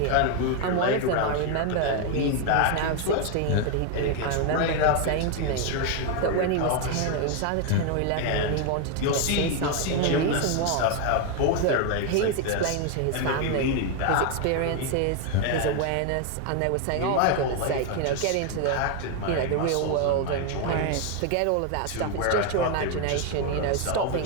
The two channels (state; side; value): different; both; correlation 0.01